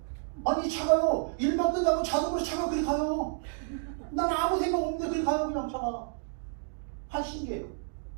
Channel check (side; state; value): left; silent; digital silence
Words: 아니 차가요. 일만 끝나고 자동으로 차가 그리 가요. 난 아무 생각 없는데 그리 가요. 그냥 차가. 한 신기해요.